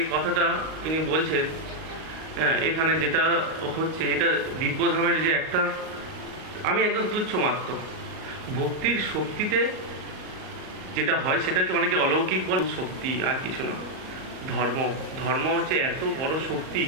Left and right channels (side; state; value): left; late; 38 ms